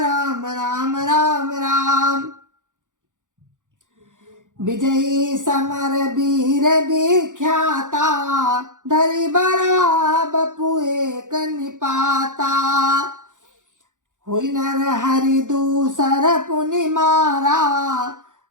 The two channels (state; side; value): late; left; 0.87 ms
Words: राम राम राम। विजयी समर वीर विख्याता, धरि बड़ा बपु एक निपाता। हुई नर हरि दूसर पुनि मारा,